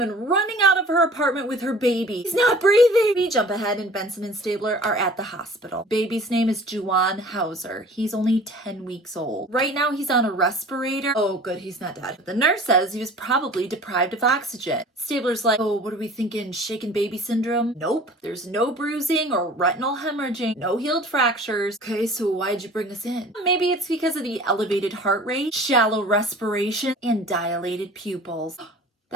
running out of her apartment with her baby. He's not breathing! We jump ahead and Benson and Stabler are at the hospital. Baby's name is Juwan Hauser. He's only 10 weeks old. Right now he's on a respirator. Oh good, he's not dead. But the nurse says he was probably deprived of oxygen. Stabler's like, oh, what are we thinking? Shaken baby syndrome? Nope. There's no bruising or retinal hemorrhaging. No healed fractures. Okay, so why'd you bring us in? Maybe it's because of the elevated heart rate, shallow respiration, and dilated pupils.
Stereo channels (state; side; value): normal; both; correlation 0.45